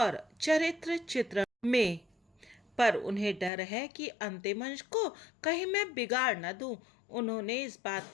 चरित्र चित्र में। पर उन्हें डर है कि अंतिम अंश को कहीं मैं बिगाड़ न दूं। उन्होंने इस बात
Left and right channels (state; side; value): drops out; right; at 3.5 s